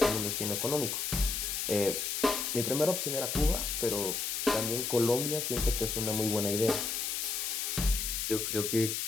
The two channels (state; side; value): noise; left; hiss, 1 dB below the sound